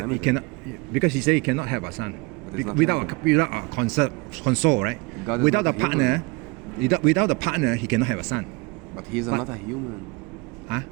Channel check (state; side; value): quieter; left; 26.8 dB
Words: limited. cannot, because He said He cannot have a son But it's not without limited. a console, right? God is Without not a a partner, without a partner, He cannot have a son. But he's not a human. Huh?